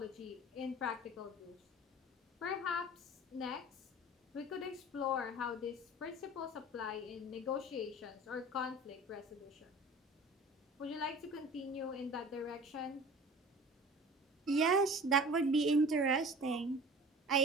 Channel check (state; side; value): normal; both; correlation 0.42